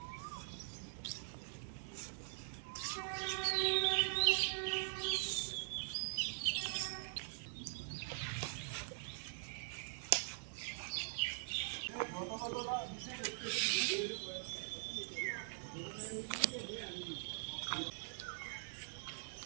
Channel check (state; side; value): silent; left; digital silence